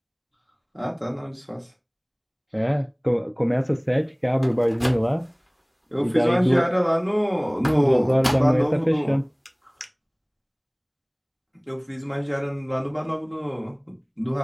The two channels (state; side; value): identical; both; correlation 1.00